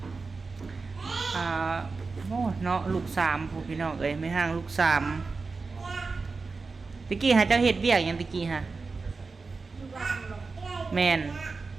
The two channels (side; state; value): left; quieter; 4.2 dB